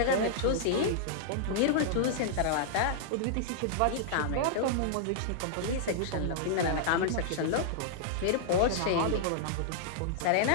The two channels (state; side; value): different; both; correlation -0.01